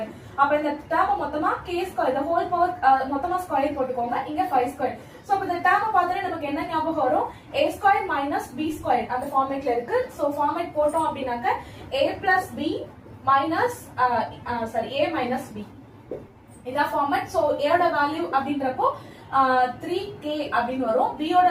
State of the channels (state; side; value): identical; both; correlation 1.00